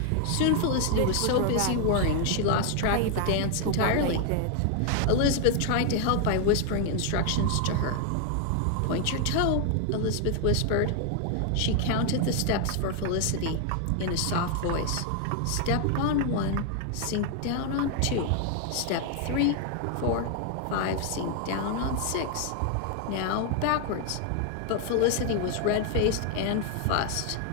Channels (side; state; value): both; different; correlation 0.00